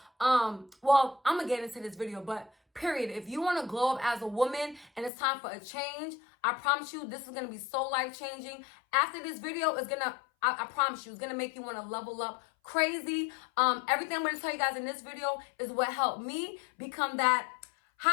well, I'm going to get into this video, but period. If you want to glow up as a woman and it's time for a change, I promise you this is going to be so life-changing. After this video is going to, I promise you, it's going to make you want to level up crazy. Everything I'm going to tell you guys in this video is what helped me become that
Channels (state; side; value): drops out; right; at 5.1 s